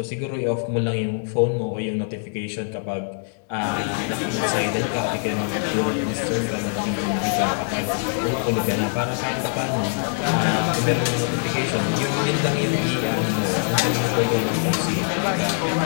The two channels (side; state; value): right; silent; 63 dB below the other